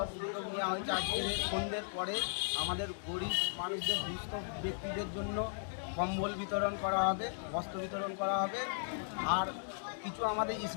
উদ্যোগ নেওয়া হয়েছে, আজকের সন্ধ্যের পরে আমাদের গরিব মানুষদের দুস্থ ব্যক্তিদের জন্য কম্বল বিতরণ করা হবে, বস্ত্র বিতরণ করা হবে। আর কিছু আমাদের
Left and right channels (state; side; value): silent; right; digital silence